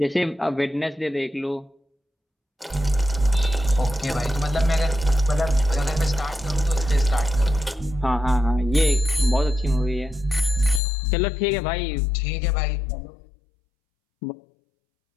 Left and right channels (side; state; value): right; drops out; at 10.8 s